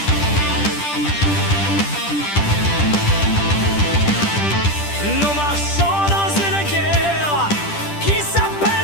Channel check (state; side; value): late; right; 10 ms